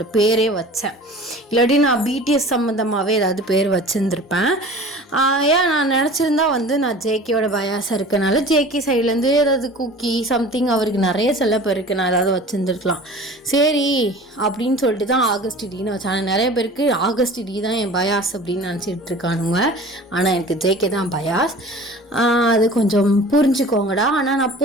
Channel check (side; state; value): both; normal; correlation 0.41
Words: பேரே வச்சேன். இல்லாட்டி நான் பிடிஎஸ் சம்மந்தமாகவே ஏதாவது பேர் வச்சுருந்துருப்பேன். ஏன் நான் நினச்சிருந்தா வந்து நான் ஜேகேயோட பயாஸாக இருக்கனால ஜேகே சைட்லேருந்து ஏதாவது குக்கி சம்திங் அவருக்கு நிறைய செல்ல பேருக்கு நான் ஏதாவது வச்சுருந்துருக்கலாம். சரி அப்படின்னு சொல்லிட்டு தான் ஆகஸ்ட் டின்னு வச்சேன். ஆனால் நிறைய பேருக்கு ஆகஸ்ட் டி தான் என் பயாஸ் அப்படின்னு நினச்சிட்டு இருக்கானுங்க. ஆனால் எனக்கு ஜேகே தான் பயாஸ். அது கொஞ்சம் புரிஞ்சுக்கோங்கடா. ஆனால் நான்